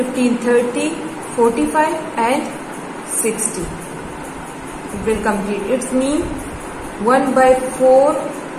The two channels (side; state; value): both; identical; correlation 1.00